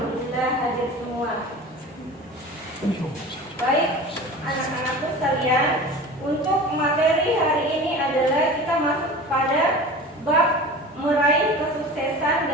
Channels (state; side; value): normal; both; correlation 0.36